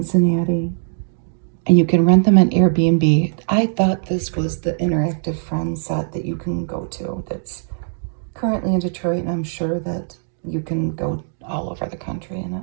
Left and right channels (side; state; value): left; silent; digital silence